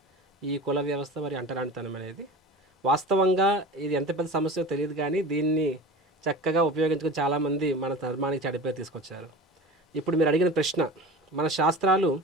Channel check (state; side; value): normal; both; correlation 0.35